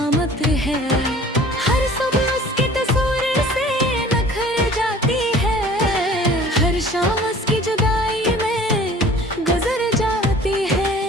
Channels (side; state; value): both; normal; correlation 0.48